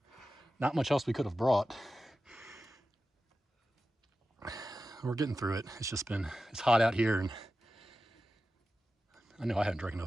much else we could have brought. We're getting through it. It's hot out here, and I know I haven't drank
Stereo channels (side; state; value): both; normal; correlation 0.93